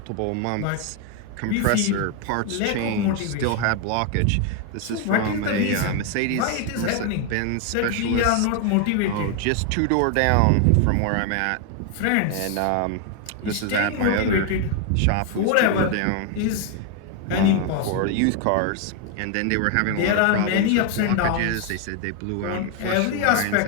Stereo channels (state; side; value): different; both; correlation 0.01